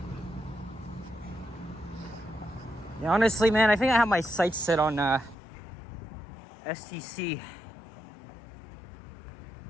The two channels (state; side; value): drops out; right; at 5.4 s